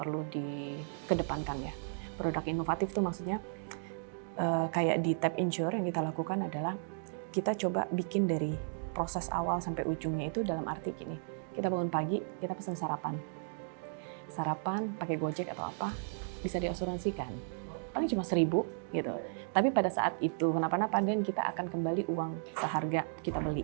dikedepankan ya. Produk inovatif itu maksudnya kayak di Tap Insure yang kita lakukan adalah kita coba bikin dari proses awal sampai ujungnya itu dalam arti gini, kita bangun pagi, kita pesan sarapan pakai Gojek atau apa, bisa diasuransikan, paling cuma 1.000 gitu. Tapi pada saat itu kenapa-napa dan kita akan kembali uang seharga kita beli,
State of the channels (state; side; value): silent; left; digital silence